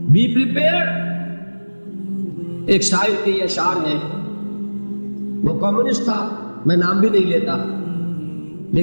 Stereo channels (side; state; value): both; inverted; correlation -1.00